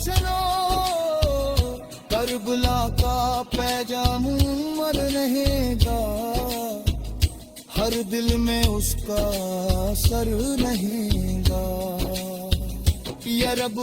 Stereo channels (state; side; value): identical; both; correlation 1.00